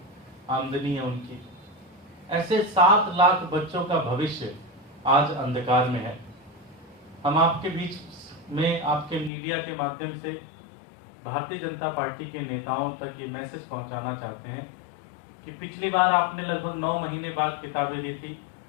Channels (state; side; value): drops out; right; at 9.3 s